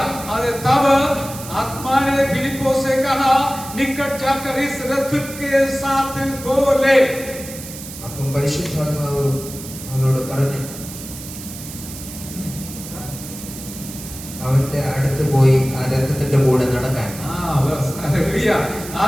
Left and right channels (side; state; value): right; noise; hiss, 12 dB below the sound